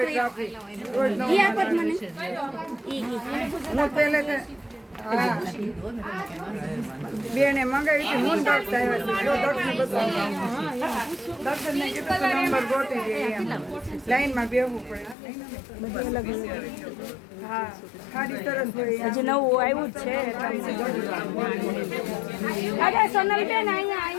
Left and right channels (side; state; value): right; drops out; at 15.2 s